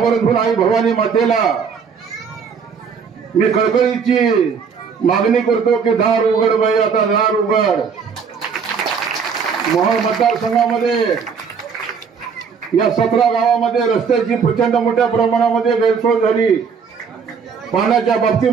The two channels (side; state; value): left; quieter; 6.1 dB